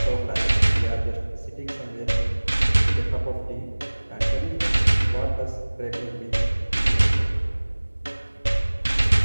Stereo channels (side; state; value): both; inverted; correlation -1.00